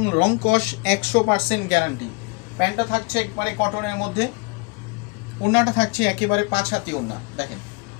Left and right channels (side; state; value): right; quieter; 29.8 dB